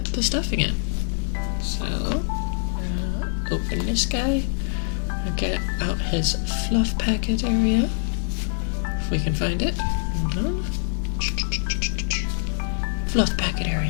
the stuffing in. So, open this guy. Get out his fluff packet area, if we can find it. Fluff packet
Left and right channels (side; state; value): right; silent; digital silence